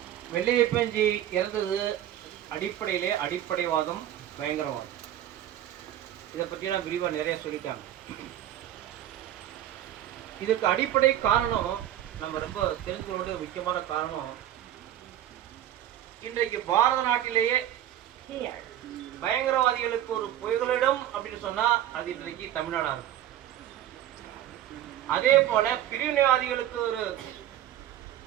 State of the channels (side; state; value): left; quieter; 11.9 dB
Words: வெள்ளையப்பஞ்சி இறந்தது அடிப்படையிலே அடிப்படைவாதம், பயங்கரவாதம். இதை பற்றி நான் விரிவாக நிறைய சொல்லிட்டாங்க. இதுக்கு அடிப்படை காரணம் நம்ம ரொம்ப தெரிஞ்சுக்கொள்ள முக்கியமான காரணம், இன்றைக்கு பாரத நாட்டிலேயே பயங்கரவாதிகளுக்கு ஒரு புகலிடம் அப்படின்னு சொன்னா அது இன்றைக்கு தமிழ்நாடா இருக்கு. அதே போல பிரிவினைவாதிகளுக்கு